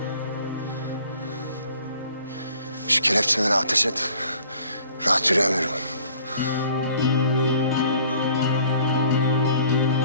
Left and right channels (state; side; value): inverted; both; correlation -0.55